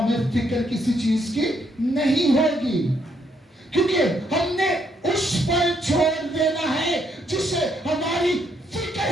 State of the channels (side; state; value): both; normal; correlation 0.73